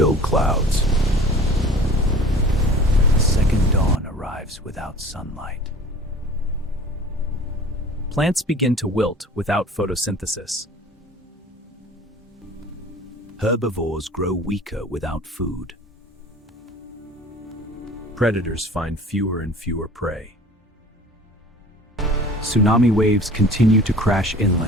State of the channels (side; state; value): both; normal; correlation 0.44